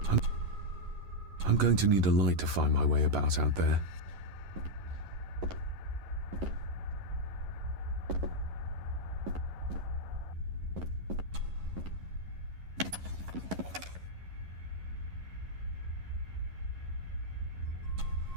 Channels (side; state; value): left; late; 11 ms